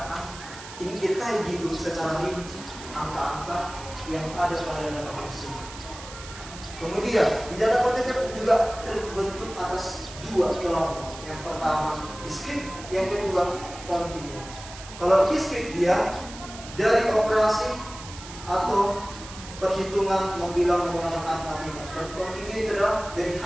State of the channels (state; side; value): noise; right; hiss, 14 dB below the sound